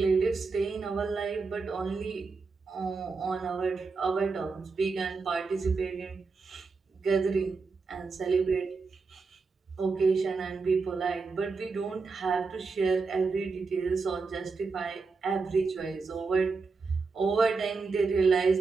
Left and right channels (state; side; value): quieter; left; 4.5 dB